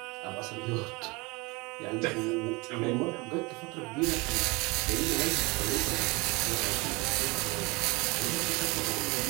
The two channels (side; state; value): left; quieter; 25.9 dB